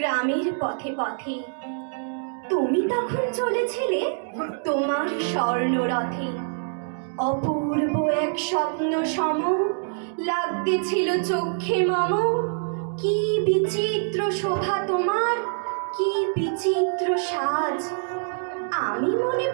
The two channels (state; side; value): silent; left; digital silence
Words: পথে পথে। তুমি তখন চলেছিলে তোমার স্বর্ণরথে। অপূর্ব এক স্বপ্ন সম লাগতেছিল চক্ষে মম। কি বিচিত্র শোভা তোমার, কি বিচিত্র সাজ। আমি মনে